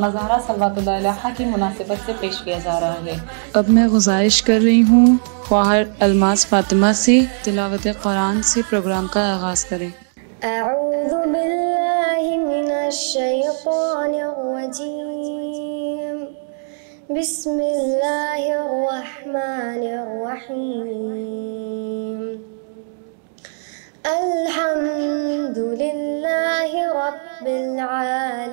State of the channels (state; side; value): silent; left; 66 dB below the other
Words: زہرا صلوات اللہ علیہا کی مناسبت سے پیش کیا جا رہا ہے۔ اب میں گزارش کر رہی ہوں خواہر الماس فاطمہ سے تلاوت قرآن سے پروگرام کا آغاز کریں۔ اعوذ باللہ من الشیطان الرجیم، بسم اللہ الرحمن الرحیم۔ الحمد للہ رب